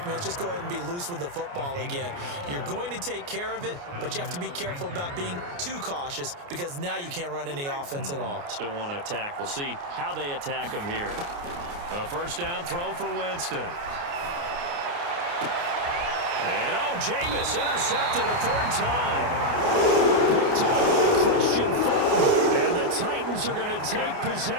me. Let's just go ahead and be loose with the football again. You're going to take care of it, but you have to be careful about being too cautious because now you can't run any offense at all. Still want to attack. We'll see how they attack him here. A first down throw for Winston. And, Jameis intercepted a 3rd time. Picked up by Christian Fulton. And the Titans are going to take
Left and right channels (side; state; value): left; late; 29 ms